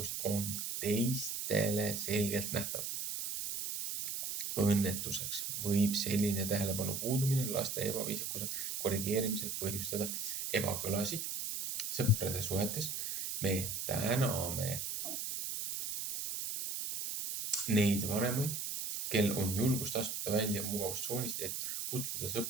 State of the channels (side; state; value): right; noise; hiss, 3 dB below the sound